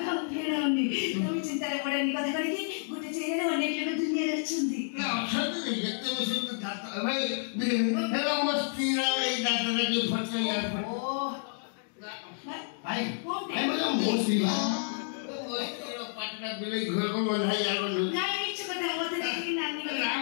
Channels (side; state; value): right; silent; digital silence